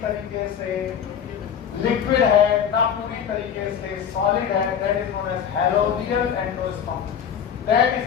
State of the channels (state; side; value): quieter; right; 8.1 dB